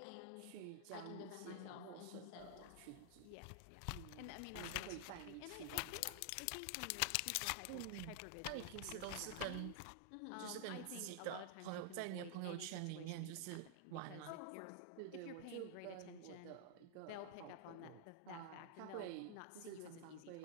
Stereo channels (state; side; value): different; both; correlation 0.00